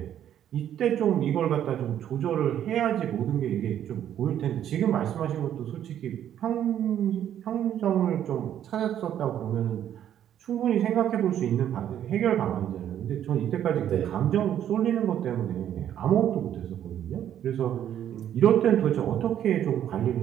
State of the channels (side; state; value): left; quieter; 10.5 dB